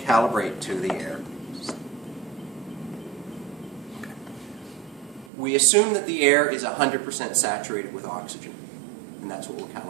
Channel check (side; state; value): left; drops out; at 5.3 s